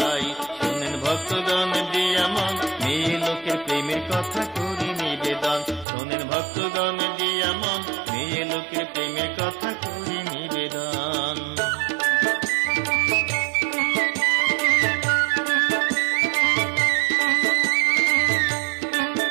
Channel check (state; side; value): drops out; left; at 5.9 s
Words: শোনেন ভক্তগণ দিয়া মন, মেয়ে লোকের প্রেমের কথা করি নিবেদন। শোনেন ভক্তগণ দিয়া মন, মেয়ে লোকের প্রেমের কথা করি নিবেদন।